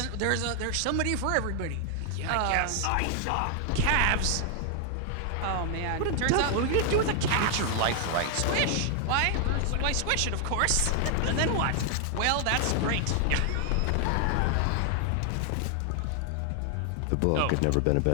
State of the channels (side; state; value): both; different; correlation 0.00